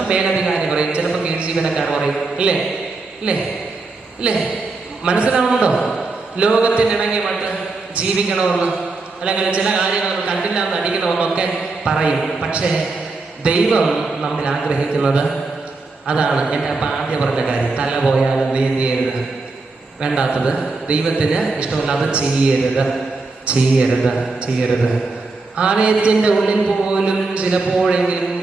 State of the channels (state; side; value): quieter; left; 3.7 dB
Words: മേലധികാരി പറയും, ചിലപ്പോൾ കീഴ് ജീവനക്കാർ പറയും. ഇല്ലേ? മനസ്സിലാവുന്നുണ്ടോ? ലോകത്തിനിണങ്ങി മറ്റ് ജീവിക്കണമെന്ന്, അല്ലെങ്കിൽ ചില കാര്യങ്ങൾ കണ്ടില്ല എന്ന് അടിക്കണമെന്നൊക്കെ പറയും. പക്ഷേ ദൈവം നമ്മൾ ആഗ്രഹിക്കുന്നത് അതാണ്. എൻ്റെ അപ്പം ആദ്യം പറഞ്ഞ കാര്യം, തല പോയാലും നീന്തിയരുത്, വേണ്ടാത്തത് ദൈവത്തിന് ഇഷ്ടമല്ലാതെ ചെയ്യരുത്. ആലയത്തിൻ്റെ ഉള്ളിൽ പോലും ചിലപ്പോഴെങ്കിലും